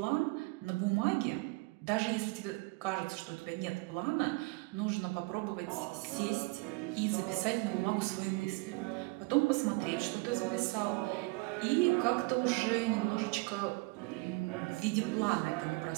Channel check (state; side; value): quieter; left; 26.0 dB